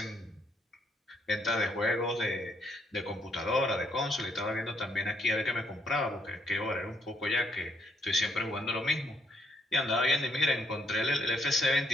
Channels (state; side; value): normal; both; correlation 0.71